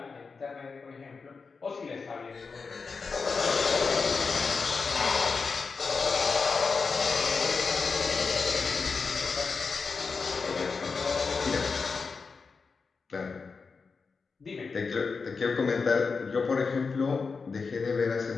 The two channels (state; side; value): quieter; right; 4.8 dB